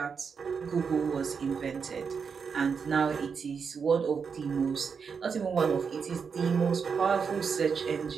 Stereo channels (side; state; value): left; quieter; 6.0 dB